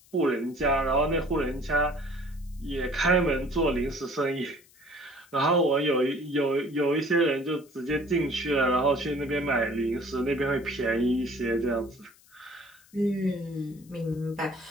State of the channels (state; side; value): noise; left; hiss, 28 dB below the sound